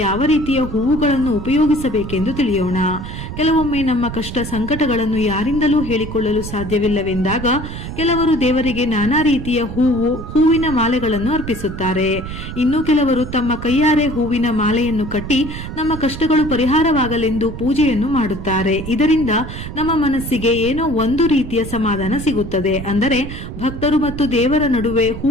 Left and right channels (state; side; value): noise; right; rumble, 9 dB below the sound